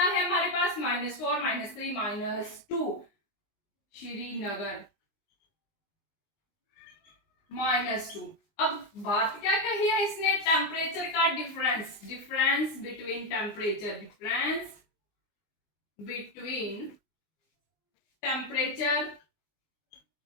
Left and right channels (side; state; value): right; late; 19 ms